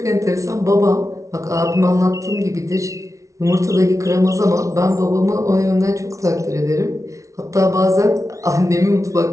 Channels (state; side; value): late; left; 0.15 ms